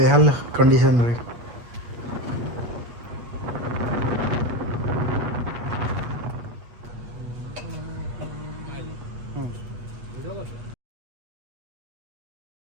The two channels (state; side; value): late; left; 8.3 ms